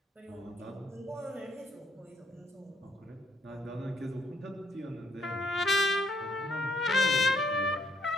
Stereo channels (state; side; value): normal; both; correlation 0.70